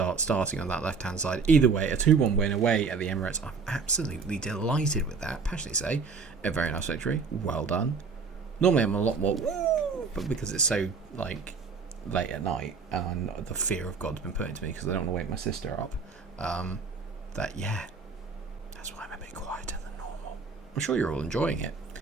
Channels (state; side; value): quieter; left; 5.0 dB